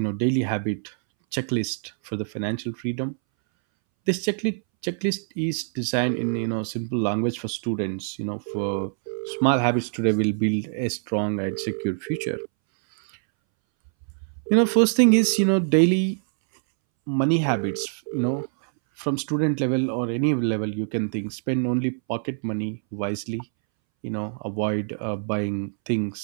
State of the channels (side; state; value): left; silent; 62 dB below the other